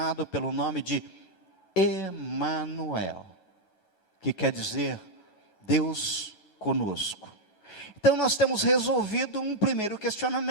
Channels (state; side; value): late; right; 9.3 ms